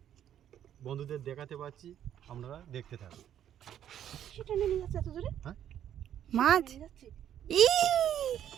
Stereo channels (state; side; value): quieter; left; 10.4 dB